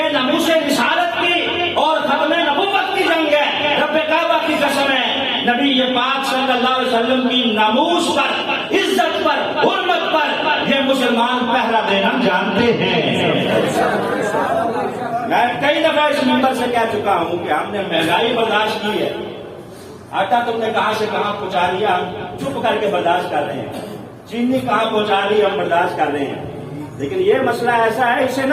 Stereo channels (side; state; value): both; identical; correlation 1.00